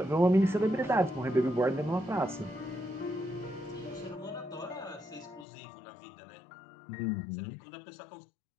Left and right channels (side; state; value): right; drops out; at 5.5 s